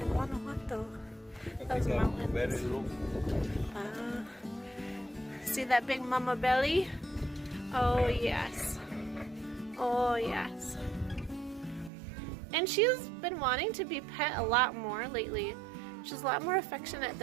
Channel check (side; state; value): left; drops out; at 11.9 s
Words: Guanajuato. Those mountains. Very low. See that big mama belly? Oh, yes. Oh, yes. And she's been wanting to be pet a lot more lately. She's a lot more affectionate